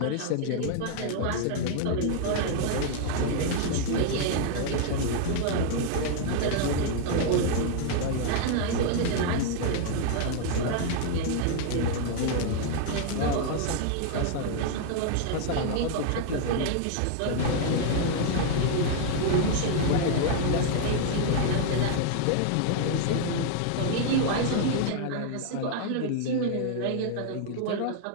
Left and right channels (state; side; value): different; both; correlation 0.00